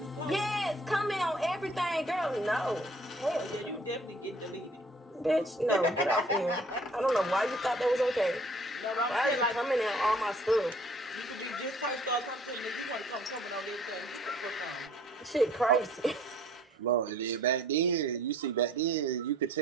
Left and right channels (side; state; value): both; normal; correlation 0.56